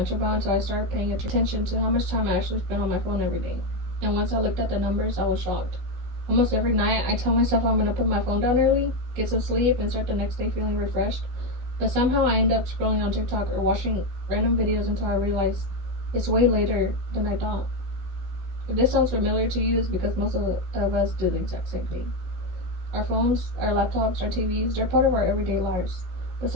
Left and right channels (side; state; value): left; late; 16 ms